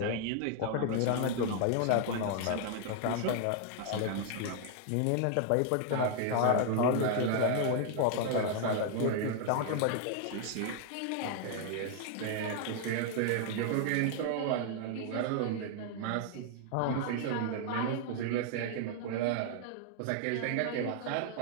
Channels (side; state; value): both; different; correlation 0.00